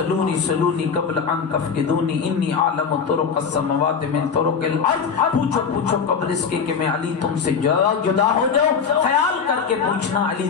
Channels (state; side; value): quieter; right; 6.2 dB